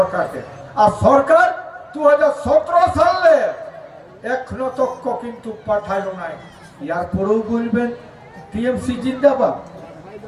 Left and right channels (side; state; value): both; identical; correlation 1.00